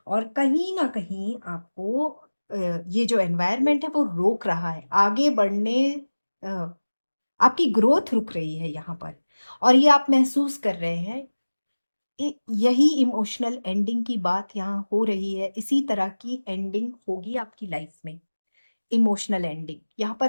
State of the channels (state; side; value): inverted; both; correlation -1.00